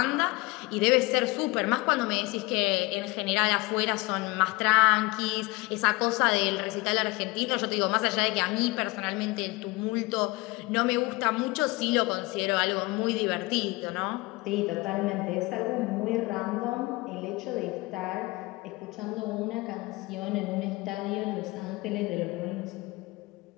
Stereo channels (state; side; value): quieter; right; 22.9 dB